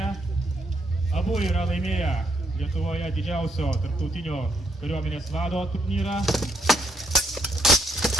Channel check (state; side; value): normal; both; correlation 0.74